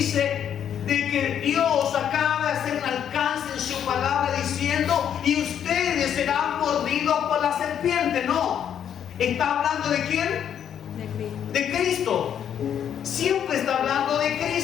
de que Dios acaba de hacer un alcance en su palabra diciendo y ustedes serán mordidos por la serpiente. No, está hablando ¿de quién? De Cristo. Siempre está hablando de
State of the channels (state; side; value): quieter; right; 9.1 dB